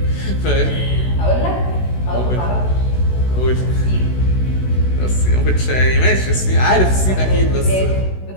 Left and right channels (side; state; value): right; late; 16 ms